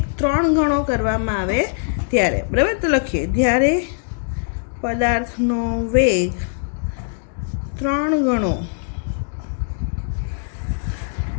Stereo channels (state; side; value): silent; right; digital silence